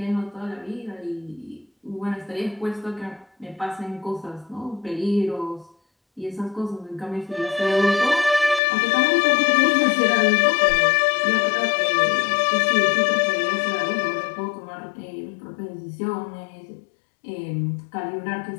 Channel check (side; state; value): right; drops out; at 8.6 s